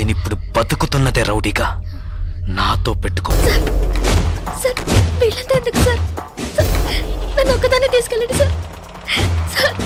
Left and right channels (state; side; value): identical; both; correlation 1.00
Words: బతుకుతున్నదే రౌడీగా. నాతో పెట్టుకో. సార్ వీళ్ళంతా ఎందుకు సార్? సార్, నన్ను ఒక్కదాన్ని తీసుకెళ్ళండి సార్. సార్